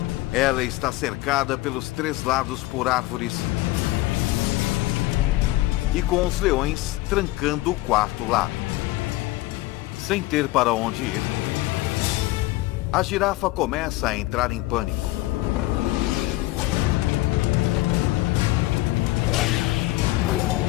Ela está cercada pelos 3 lados por árvores e com os leões trancando o 4º lado. Sem ter para onde ir, a girafa começa a entrar em pânico.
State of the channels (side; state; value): right; quieter; 18.6 dB